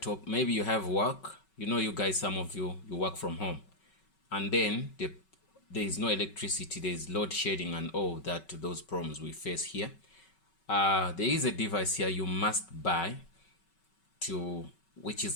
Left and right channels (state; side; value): late; right; 5.3 ms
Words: maybe you have work, you guys, some of you work from home, and then there is no electricity, there is load shedding and all that, those problems we face here. There is a device here you must buy which